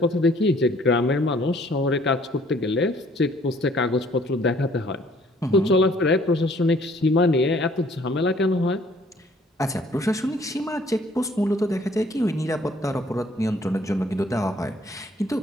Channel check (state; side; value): normal; both; correlation 0.60